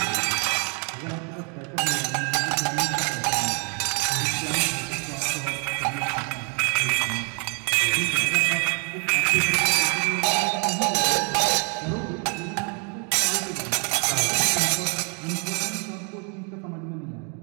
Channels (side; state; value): left; quieter; 38.4 dB